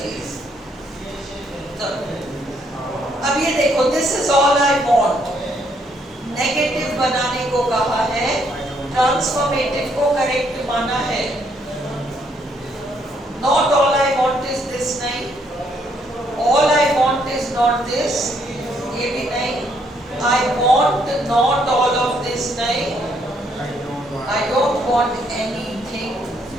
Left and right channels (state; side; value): normal; both; correlation 0.71